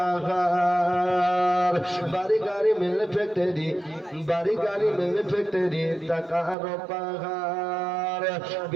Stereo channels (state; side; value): drops out; left; at 6.6 s